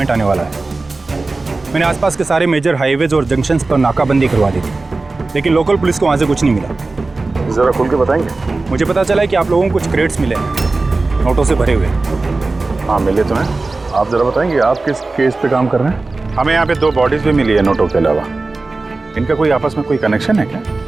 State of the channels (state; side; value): quieter; left; 3.5 dB